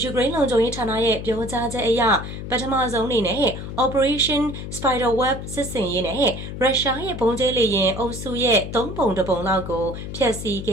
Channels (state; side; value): noise; left; hum, 8 dB below the sound